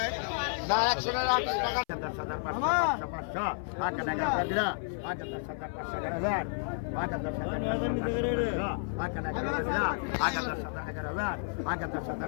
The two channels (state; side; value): silent; right; 55 dB below the other